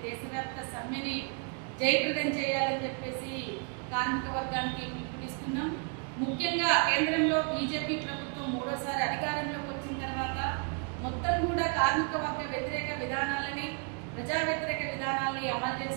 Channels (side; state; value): left; quieter; 34.7 dB